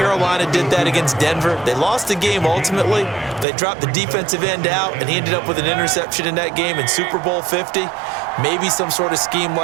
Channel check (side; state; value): left; drops out; at 3.5 s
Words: did that against Denver? They lost the game ultimately. They dropped the defensive end out, and he ended up with an interception in that game in Super Bowl 50. Maybe some sort of scheme